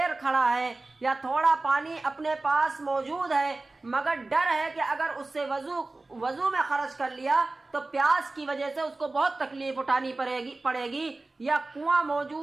کھڑا ہے، یا تھوڑا پانی اپنے پاس موجود ہے مگر ڈر ہے کہ اگر اس سے وضو میں خرچ کر لیا تو پیاس کی وجہ سے اس کو بہت تکلیف اٹھانی پڑے گی، یا کنواں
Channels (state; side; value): quieter; left; 3.2 dB